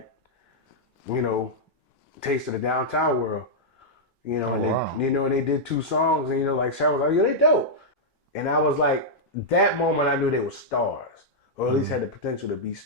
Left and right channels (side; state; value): both; normal; correlation -0.06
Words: you know, taste of the downtown world. You know, and they did 2 songs, and you know, like Sarah was like, "Yeah, they dope," and I was like, that moment I knew they were stars, or at least had the potential to be